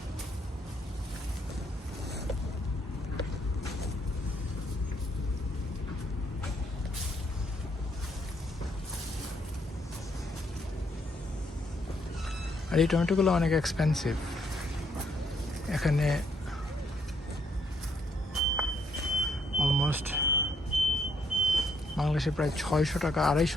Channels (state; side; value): normal; both; correlation 0.72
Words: আর এই টমেটোগুলো অনেক এক্সপেন্সিভ। এখানে অলমোস্ট বাংলাদেশে প্রায় 600 টাকা